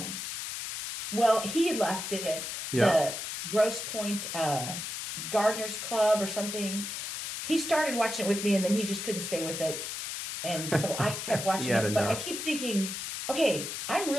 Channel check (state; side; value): noise; left; hiss, 5 dB below the sound